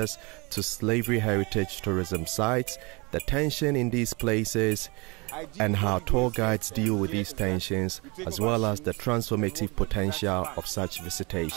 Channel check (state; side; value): quieter; left; 27.8 dB